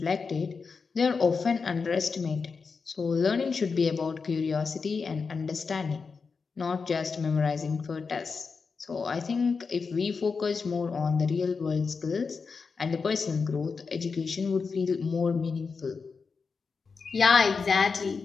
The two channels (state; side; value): quieter; right; 5.0 dB